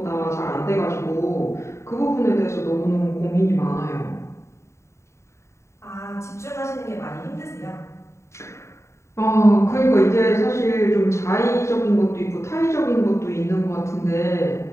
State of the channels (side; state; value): right; late; 0.14 ms